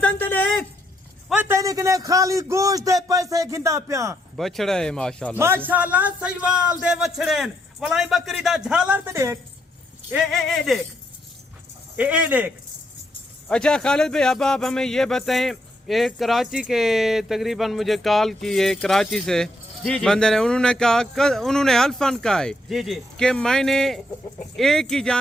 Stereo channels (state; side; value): normal; both; correlation 0.76